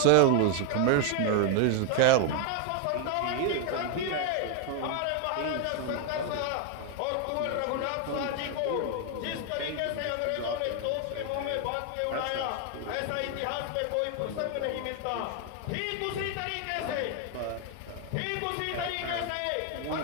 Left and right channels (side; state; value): both; different; correlation 0.01